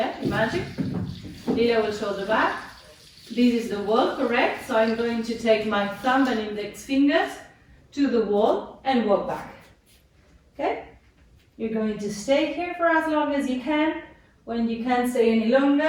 imagine. Lila will show the back. This is the wall, correct? So I'm going to take my thumb and index fingers to the wall and walk back. Okay? You're going to stay here for as long as you can. When you can't stay any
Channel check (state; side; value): identical; both; correlation 1.00